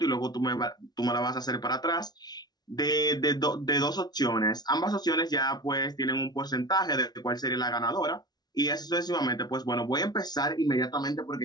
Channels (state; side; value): late; right; 0.19 ms